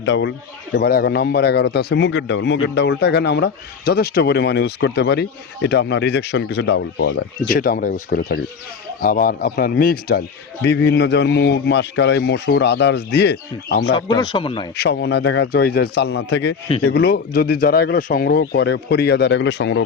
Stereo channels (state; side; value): quieter; right; 5.9 dB